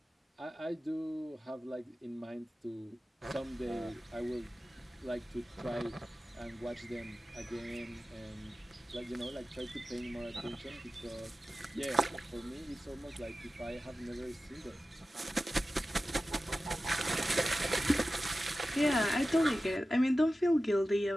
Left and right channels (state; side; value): normal; both; correlation 0.94